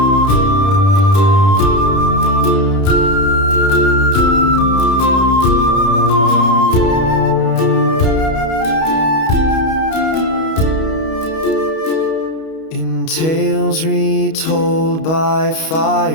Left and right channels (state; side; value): late; right; 31 ms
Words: Tales retold by